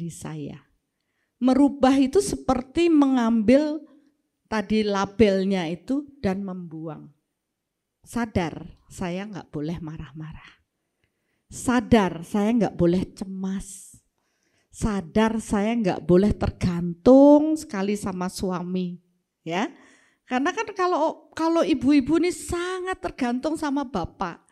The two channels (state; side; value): identical; both; correlation 1.00